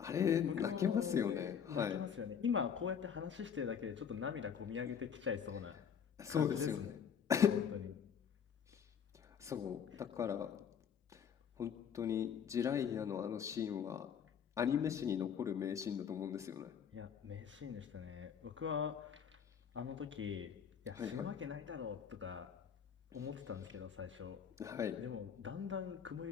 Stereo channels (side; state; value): right; quieter; 7.7 dB